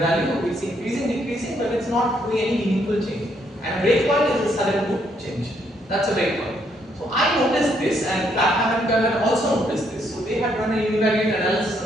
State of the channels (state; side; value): normal; both; correlation 0.72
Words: It's increasing, decreasing, but it's not doing any meaningful change. And a breakpoint is a sudden good change. That's a breakpoint. So I noticed this, and Clapham and Kerr also noticed this. So they had run a univariate analysis